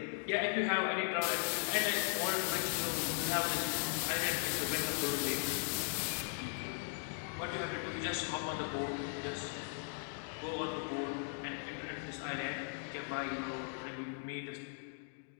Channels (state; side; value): silent; right; 52 dB below the other